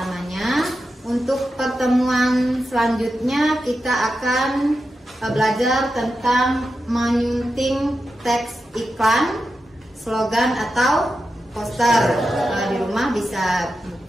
Untuk pertemuan selanjutnya kita akan belajar tentang menyunting teks iklan, slogan atau poster. Di rumah bisa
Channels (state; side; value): normal; both; correlation 0.89